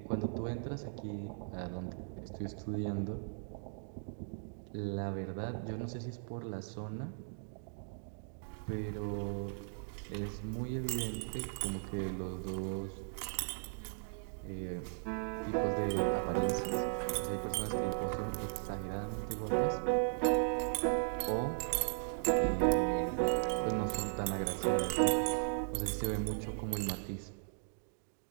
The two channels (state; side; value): silent; left; digital silence